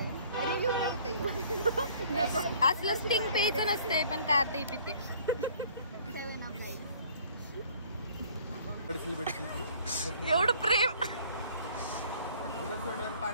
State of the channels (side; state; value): both; inverted; correlation -0.55